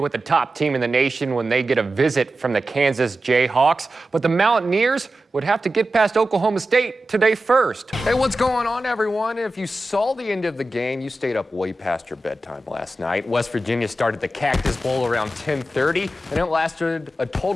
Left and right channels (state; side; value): normal; both; correlation 0.93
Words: the top team in the nation when they get a visit from the Kansas Jayhawks. But the Mountaineers would have to get past Oklahoma State today first. Hey, what's going on, everyone? If you saw the end of the game, you stayed up way past your bedtime last night. West Virginia started the Cactus Bowl around 10:30, and it lasted a